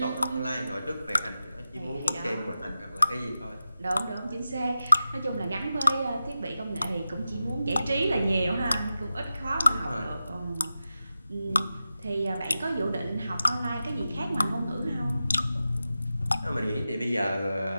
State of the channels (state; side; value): inverted; both; correlation -0.92